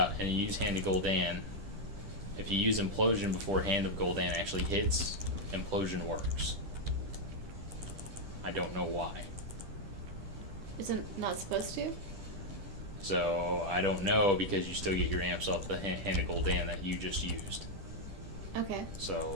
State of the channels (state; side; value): late; left; 10 ms